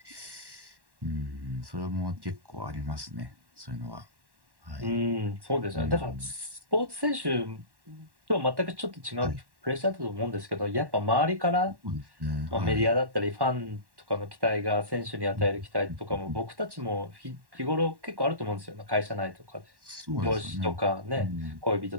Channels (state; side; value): late; left; 1.1 ms